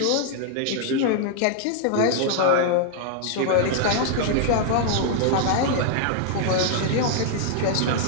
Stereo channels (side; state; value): both; different; correlation 0.00